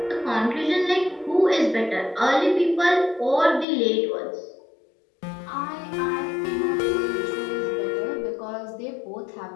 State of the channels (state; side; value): drops out; right; at 3.7 s